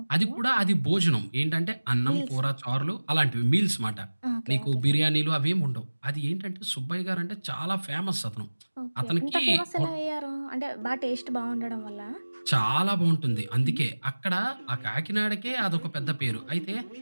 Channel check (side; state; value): both; inverted; correlation -1.00